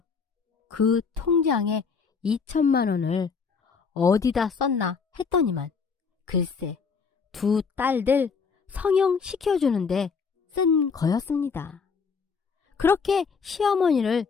그 통장에 2천만 원을 어디다 썼나 했더니만 글쎄 두 딸들 성형 시켜주는데 쓴 거였습니다. 그렇게 시어머니를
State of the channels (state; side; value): quieter; right; 5.5 dB